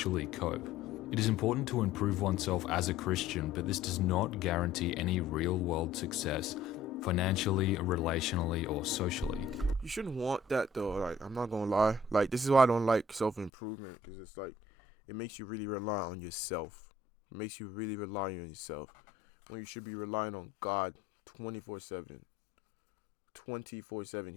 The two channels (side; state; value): right; drops out; at 13.5 s